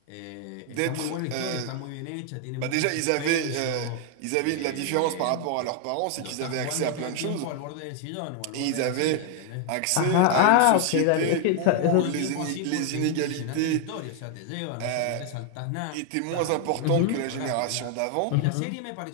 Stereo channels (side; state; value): both; different; correlation 0.00